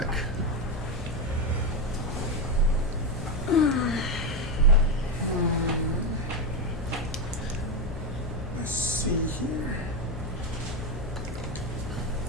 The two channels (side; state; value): left; noise; hum, 9 dB below the sound